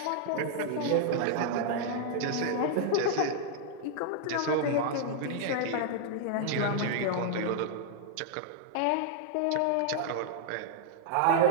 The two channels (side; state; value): both; different; correlation -0.01